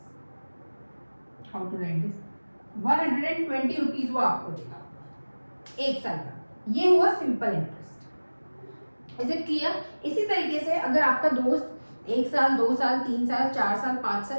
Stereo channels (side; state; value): both; inverted; correlation -1.00